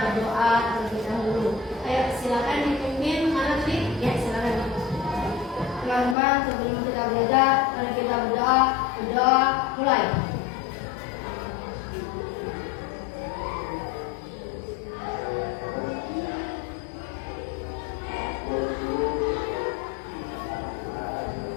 berdoa terlebih dahulu. Ayo silakan dipimpin, mana tadi? Ya silakan. Teman-teman, sebelum kita belajar, mari kita berdoa. Berdoa mulai.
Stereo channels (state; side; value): drops out; right; at 6.2 s